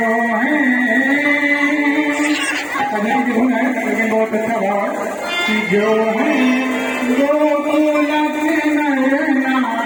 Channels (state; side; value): identical; both; correlation 1.00